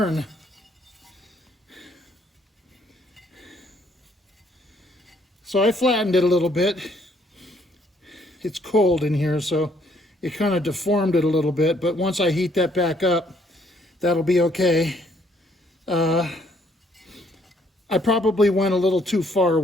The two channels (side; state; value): both; normal; correlation 0.66